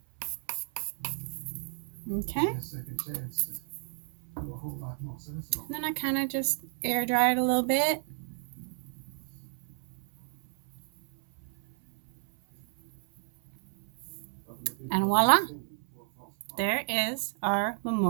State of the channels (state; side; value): silent; left; 57 dB below the other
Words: Okay. And then I kind of just air dry it a little bit. And voila, there is our